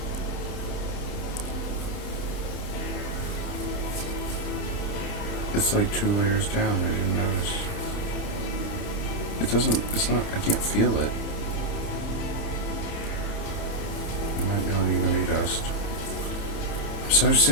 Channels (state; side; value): late; right; 30 ms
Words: It's like 2 layers down, I didn't notice. It doesn't, it's not, I can't feel it. It might not even be dust. I'm so